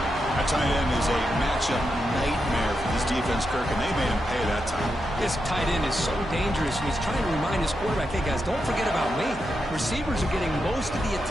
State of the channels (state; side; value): noise; right; hum, 14 dB below the sound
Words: That tight end is a matchup nightmare for this defense, Kirk, and they made him pay that time. This tight end is so dangerous, and he's trying to remind his quarterback, hey, guys, don't forget about me. Receivers are getting most of the